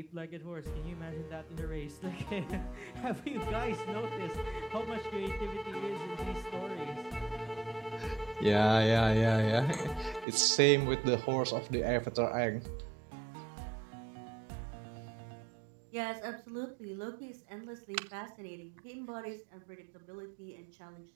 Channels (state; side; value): drops out; left; at 10.2 s